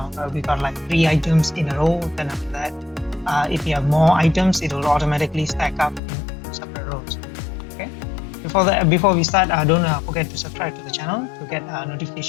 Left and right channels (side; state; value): right; drops out; at 6.0 s